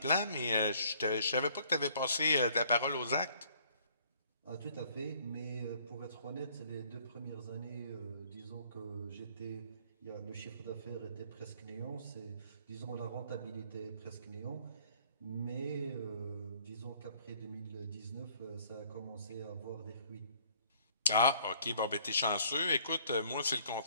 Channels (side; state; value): both; inverted; correlation -0.60